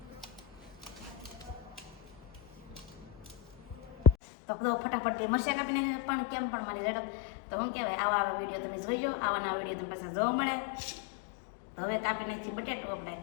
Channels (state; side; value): drops out; right; at 4.2 s